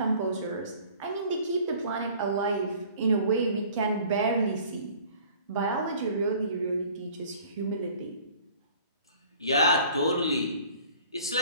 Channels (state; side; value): inverted; both; correlation -0.51